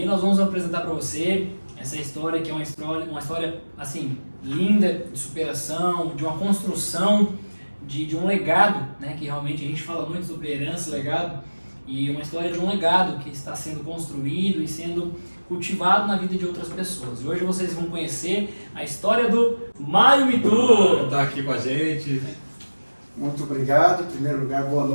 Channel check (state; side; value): inverted; both; correlation -1.00